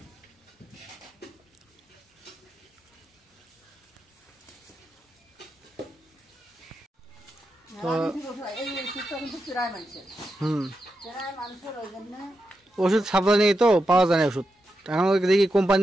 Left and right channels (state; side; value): normal; both; correlation 0.87